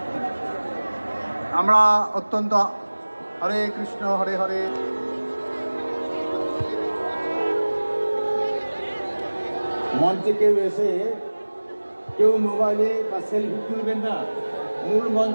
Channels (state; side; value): inverted; both; correlation -1.00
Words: আমরা অত্যন্ত হরে কৃষ্ণ হরে হরে। মঞ্চে কেউ এসে কেউ মোবাইলে বা সেলফি তুলবেন না, মূল